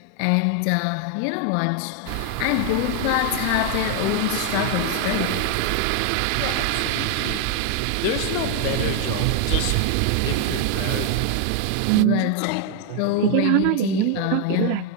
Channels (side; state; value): both; different; correlation 0.00